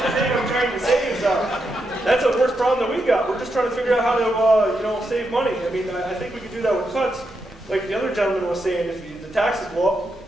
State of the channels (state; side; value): normal; both; correlation 0.84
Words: The thing I'm trying to say is that's the worst problem that we got. We're just trying to figure out how to save money. I mean, I think we could do that with cuts. Like the other gentleman was saying, if the taxes go up,